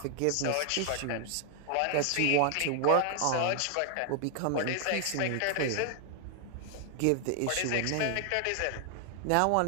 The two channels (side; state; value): both; different; correlation 0.00